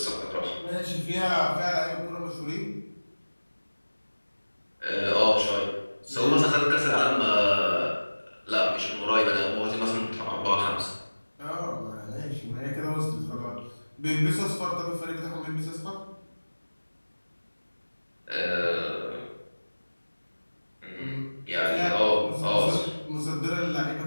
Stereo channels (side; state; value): both; inverted; correlation -1.00